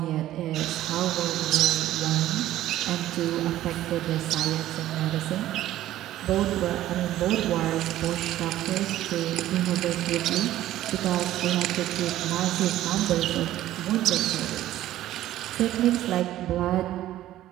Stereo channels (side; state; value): left; quieter; 13.8 dB